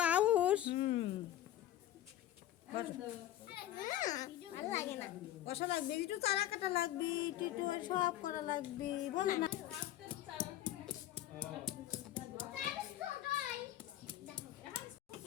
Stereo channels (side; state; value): right; quieter; 13.2 dB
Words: আউস কষা লাগবে একটু চারা কাটা লাগবে একটু সব করা লাগবে বলে না